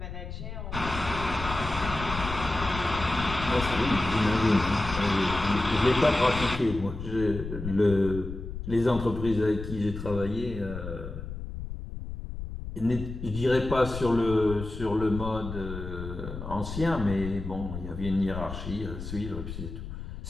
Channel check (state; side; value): noise; left; rumble, 8 dB below the sound